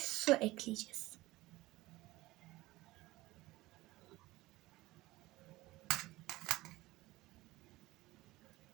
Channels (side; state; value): left; quieter; 18.9 dB